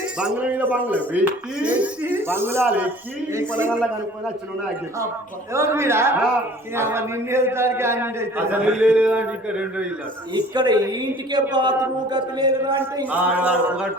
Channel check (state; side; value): normal; both; correlation 0.49